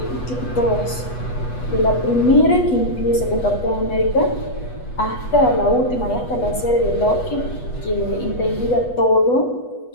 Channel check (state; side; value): late; right; 8.2 ms